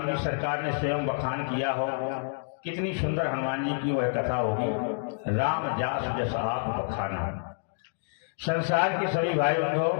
जी सरकार ने स्वयं बखान किया हो। कितनी सुंदर हनुमान जी की वह कथा होगी। राम जास जस आप बखाना। संसार के सभी भाई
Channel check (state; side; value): silent; right; digital silence